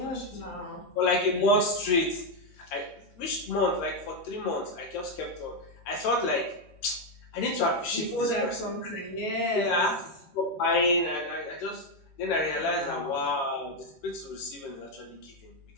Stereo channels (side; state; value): right; late; 13 ms